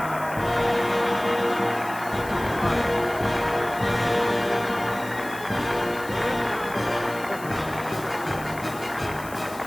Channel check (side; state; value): left; noise; hiss, 17 dB below the sound